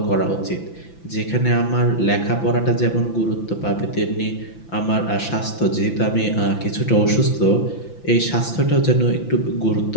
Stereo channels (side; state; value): right; late; 5.9 ms